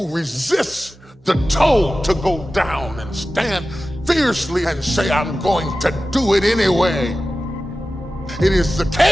who resist the toll to go down and stand fiercely and say, I'm going to do it anyway. It is the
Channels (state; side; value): normal; both; correlation 0.95